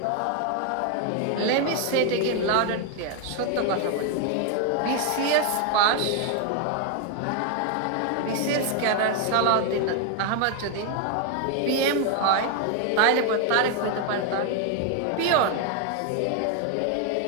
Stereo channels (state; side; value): different; both; correlation 0.01